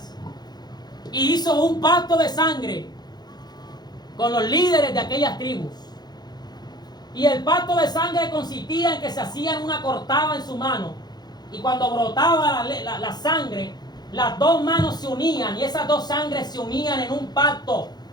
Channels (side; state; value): right; late; 0.20 ms